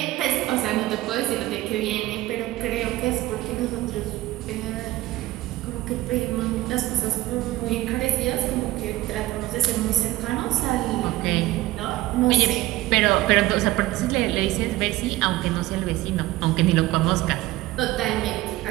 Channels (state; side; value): quieter; left; 17.0 dB